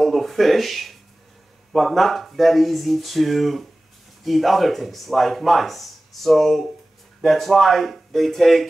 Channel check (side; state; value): both; normal; correlation 0.97